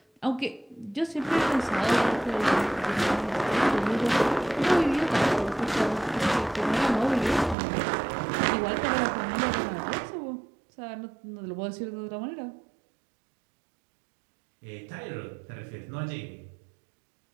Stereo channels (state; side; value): drops out; left; at 7.6 s